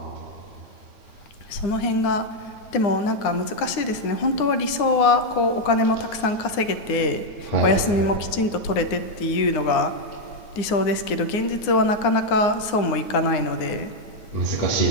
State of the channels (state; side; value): late; right; 9.7 ms